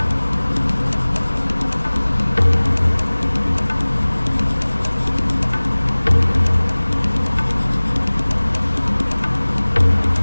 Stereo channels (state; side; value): inverted; both; correlation -1.00